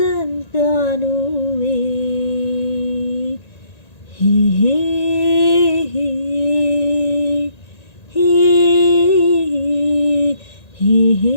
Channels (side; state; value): right; late; 1.9 ms